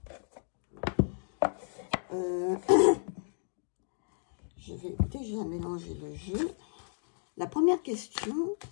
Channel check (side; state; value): right; silent; digital silence